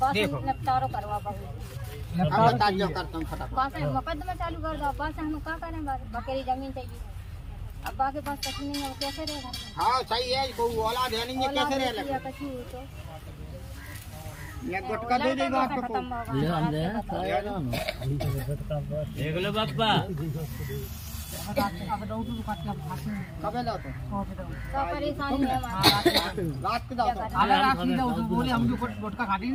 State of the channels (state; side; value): identical; both; correlation 1.00